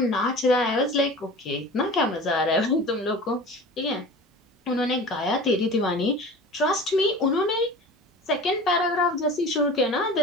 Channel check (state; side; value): normal; both; correlation 0.37